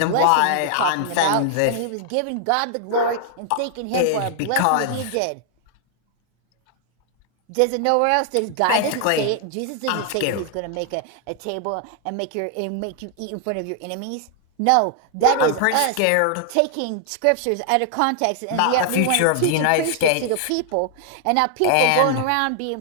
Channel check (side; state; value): both; different; correlation 0.00